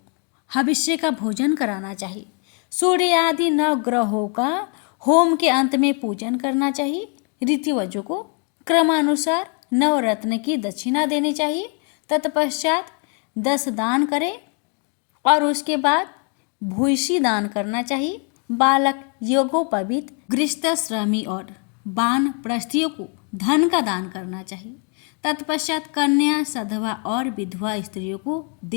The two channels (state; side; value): quieter; right; 38.9 dB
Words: हविष्य का भोजन कराना चाहिए। सूर्य आदि 9 ग्रहों का होम के अंत में पूजन करना चाहिए। ऋत्विजों को क्रमानुसार नवरत्न की दक्षिणा देनी चाहिए। तत्पश्चात 10 दान करें और उसके बाद भूयसी दान करना चाहिए। बालक, योगोपवीत, गृहस्थश्रमी और वानप्रस्थियों को धन का दान करना चाहिए। तत्पश्चात कन्या, सधवा और विधवा स्त्रियों को